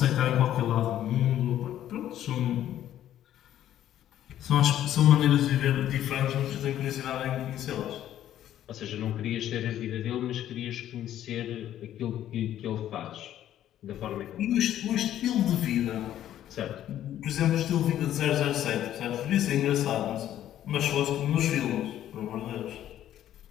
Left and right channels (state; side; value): quieter; right; 11.8 dB